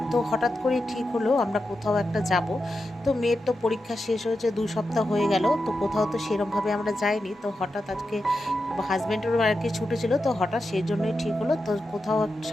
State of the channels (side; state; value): both; normal; correlation 0.89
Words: তো হঠাৎ করেই ঠিক হলো আমরা কোথাও একটা যাব। তো মেয়ের তো পরীক্ষা শেষ হয়েছে, 2 সপ্তাহ হয়ে গেল, তো কোথাও তো সেরমভাবে আমরা যাইনি। তো হঠাৎ আজকে হাজব্যান্ডেরও আর কি ছুটি ছিল, তো হঠাৎ সেই জন্যই ঠিক হলো তো কোথাও